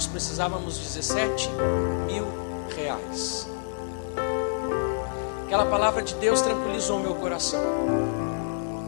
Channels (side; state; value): right; silent; digital silence